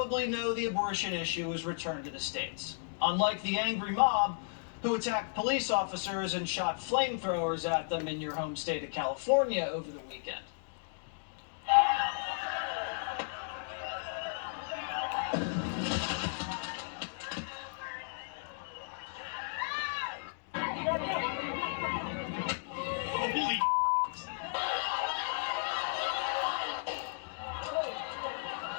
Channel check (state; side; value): silent; right; digital silence